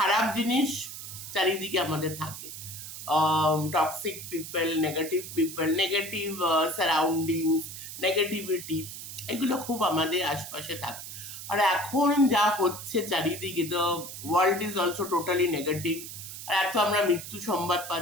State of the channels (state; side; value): noise; right; hiss, 10 dB below the sound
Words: জিনিস চারিদিকে আমাদের থাকে। Toxic people, negative surroundings, negativity, এগুলো খুব আমাদের আশপাশে থাকে। আর এখন যা হচ্ছে চারিদিকে, তো world is also totally negative. আর এত আমরা মৃত্যু সংবাদ